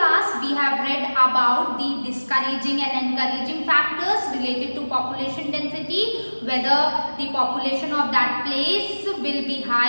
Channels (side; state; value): both; inverted; correlation -1.00